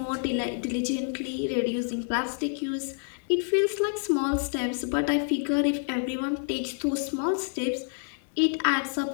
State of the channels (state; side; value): silent; right; 59 dB below the other